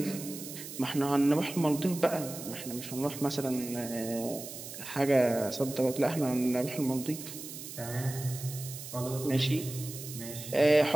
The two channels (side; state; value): right; noise; hiss, 11 dB below the sound